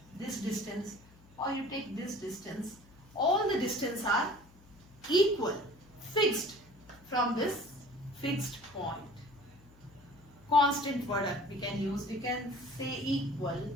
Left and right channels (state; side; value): noise; left; hum, 25 dB below the sound